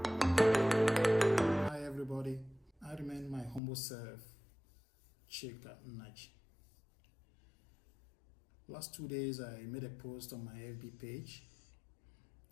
everybody, I remain my humble self, Chika Naj. Last 2 days I made a post on my FB page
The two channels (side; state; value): right; drops out; at 3.6 s